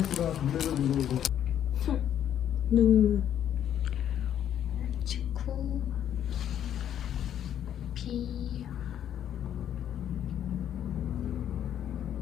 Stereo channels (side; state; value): right; quieter; 10.2 dB